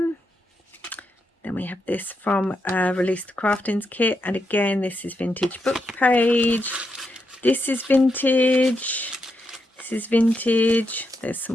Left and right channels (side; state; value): both; normal; correlation 0.83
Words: Then we have this from Release the Craftings kit, and again this is vintage book page. This is vintage. This is vintage. There's